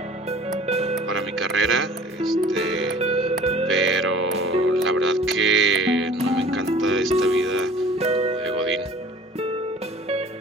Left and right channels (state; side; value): normal; both; correlation 0.47